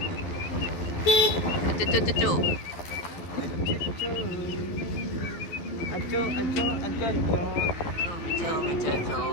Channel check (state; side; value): late; right; 11 ms